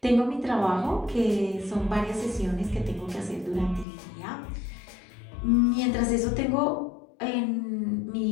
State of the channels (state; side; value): drops out; right; at 3.9 s